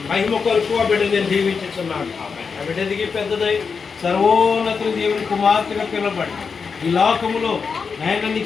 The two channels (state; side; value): quieter; right; 5.5 dB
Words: మహిమ కొరకు ఆ బిడ్డ నేను దీవించుచున్నాను. ఆ బిడ్డ ఎదిగి పెద్దదై సర్వోన్నతుని దేవుని కుమార్తెగా పిలబడి ఈ లోకములో ఆయన